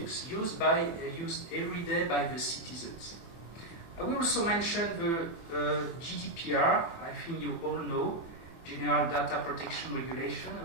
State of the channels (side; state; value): right; late; 24 ms